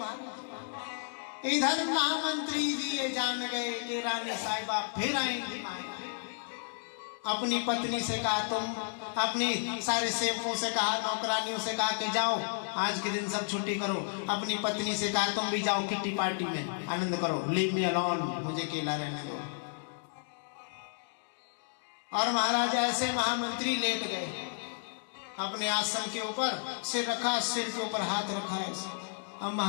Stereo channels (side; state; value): right; silent; digital silence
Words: इधर महामंत्री जी ये जान गए कि रानी साहिबा फिर आएंगी। अपनी पत्नी से कहा, तुम अपनी सारे सेवकों से कहा, नौकरानियों से कहा कि जाओ आज के दिन सब छुट्टी करो। अपनी पत्नी से कहा तुम भी जाओ किट्टी पार्टी में आनंद करो, लीव मी अलोन, मुझे अकेला रहने दो। और महाराज ऐसे महामंत्री लेट गए अपने आसन के ऊपर, सिर रखा, सिर के ऊपर हाथ रखा है। अब